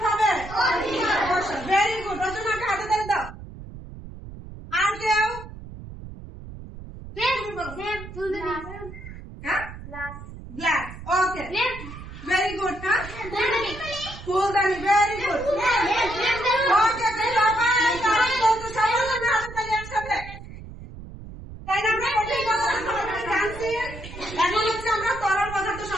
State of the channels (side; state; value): right; noise; rumble, 13 dB below the sound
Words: হবে? Very good. রচনাকে হাতে ধরে দাও। আর কেউ? গ্লাস। ওকে, ভেরি গুড। হ্যাঁ, ফুলদানি। Very good. ওকে, এখন হচ্ছে আমরা তরল পদার্থ